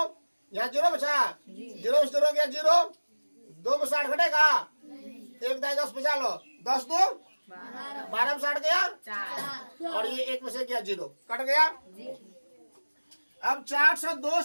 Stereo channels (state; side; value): inverted; both; correlation -1.00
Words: यहाँ 0 बचा, 0 में 0 गया 0, 2 में 60 घटेगा, 1 दाई 10 बचा लो, 10 2 12 में 60 गया, और ये 1 में से गया 0, कट गया। अब 402